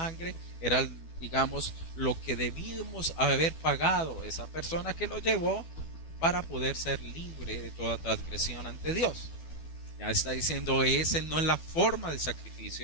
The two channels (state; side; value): late; right; 12 ms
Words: era, digamos, lo que debíamos haber pagado esa persona que lo llevó para poder ser libre de toda transgresión ante Dios. Ya está diciendo, esa no es la forma de